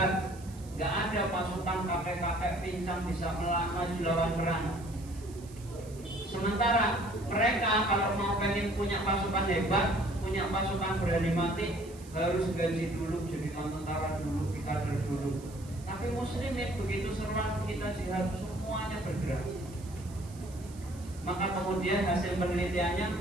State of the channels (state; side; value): noise; right; hiss, 21 dB below the sound